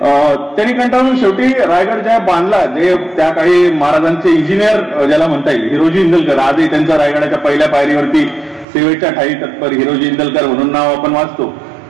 त्यांनी कंटाळून शेवटी रायगड ज्या बांधला, जे त्या काळी महाराजांचे इंजिनियर ज्याला म्हणता येईल, हिरोजी इंदलकर, आजही त्यांचा रायगडाच्या पहिल्या पायरीवरती सेवेच्या ठाई तत्पर हिरोजी इंदलकर म्हणून नाव आपण वाचतो.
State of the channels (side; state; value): left; drops out; at 8.7 s